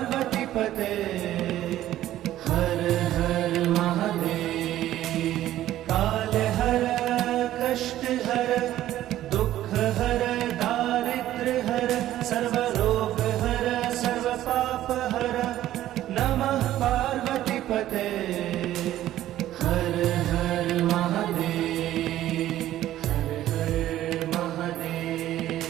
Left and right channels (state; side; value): quieter; left; 13.5 dB